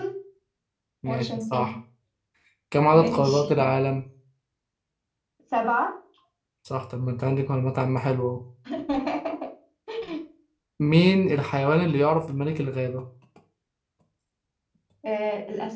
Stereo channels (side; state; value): both; identical; correlation 1.00